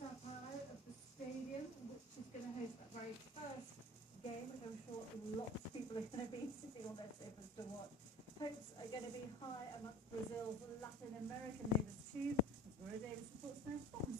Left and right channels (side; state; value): both; normal; correlation 0.41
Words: Paulo of the stadium, which is going to host that very first game, which I'm sure lots of people are going to be sitting on their sofas to watch. Hopes are going to be high amongst Brazil's Latin American neighbours too. As Maria Davis reports now from